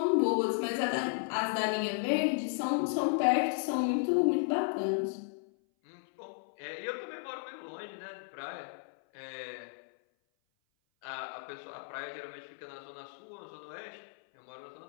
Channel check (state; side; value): silent; right; 55 dB below the other